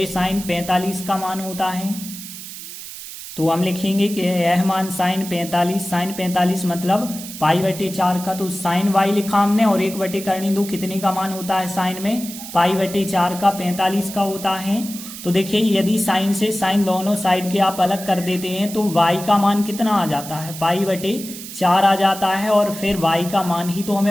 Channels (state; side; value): noise; right; hiss, 12 dB below the sound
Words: साइन 45 का मान होता है। तो हम लिखेंगे कि यह मान साइन 45 मतलब π/4 का, तो साइन y लिखा हमने, और 1/2 कितने का मान होता है साइन में, π/4 का 45 का होता है। तो देखिए यदि साइन से साइन दोनों साइड के आप अलग कर देते हैं तो y का मान कितना आ जाता है, π/4 आ जाता है। और फिर y का मान ही तो